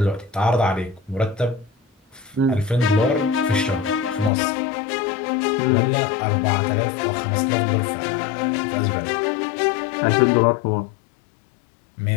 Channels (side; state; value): right; drops out; at 4.3 s